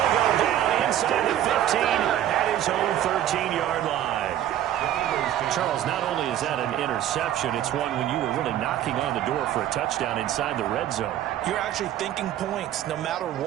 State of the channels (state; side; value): quieter; left; 11.7 dB